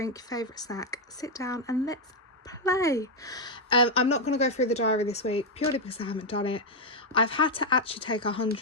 your favorite snack, sit down and let's play. I'm not going to go through the diary this week purely because I haven't done it. I've had to actually take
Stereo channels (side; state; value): both; normal; correlation 0.02